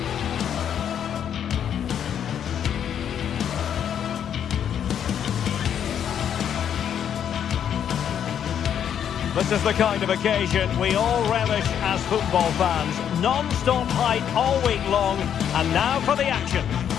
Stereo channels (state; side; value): quieter; right; 9.0 dB